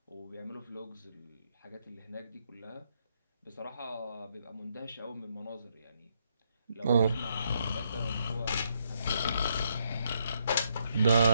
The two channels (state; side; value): inverted; both; correlation -0.76